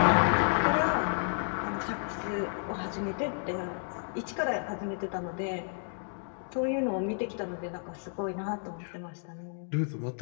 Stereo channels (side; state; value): right; silent; digital silence